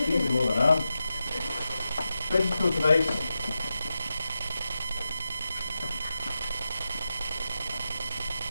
Easy more than that. Digital device.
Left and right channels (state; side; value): inverted; both; correlation -0.90